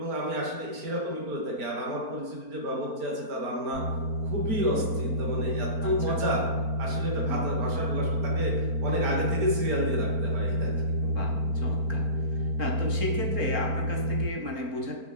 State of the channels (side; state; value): left; late; 4.4 ms